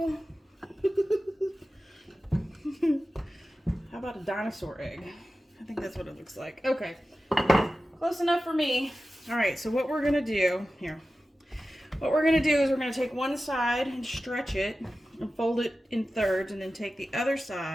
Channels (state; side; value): normal; both; correlation 0.94